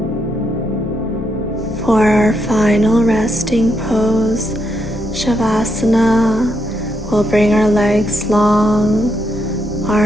For our final resting pose, Savasana, we'll bring our legs long,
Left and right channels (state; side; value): normal; both; correlation 0.80